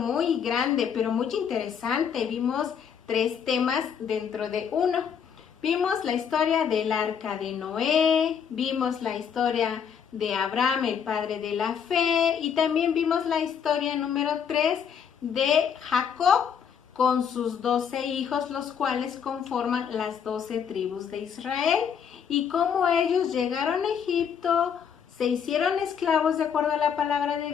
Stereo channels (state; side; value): quieter; right; 7.6 dB